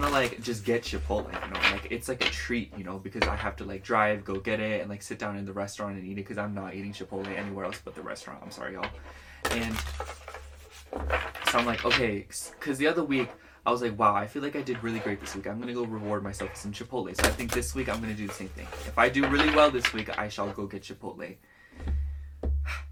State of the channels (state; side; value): identical; both; correlation 1.00